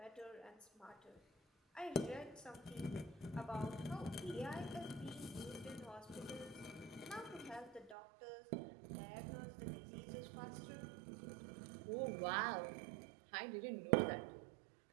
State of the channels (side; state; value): left; drops out; at 8.0 s